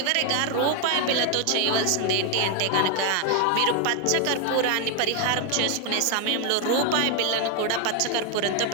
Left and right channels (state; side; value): different; both; correlation 0.01